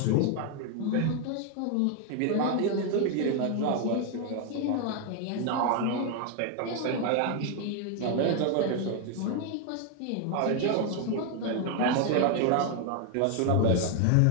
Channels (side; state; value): both; different; correlation 0.01